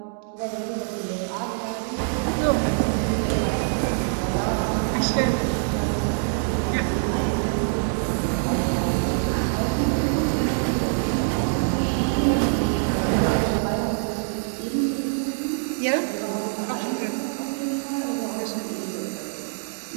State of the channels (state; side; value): silent; left; digital silence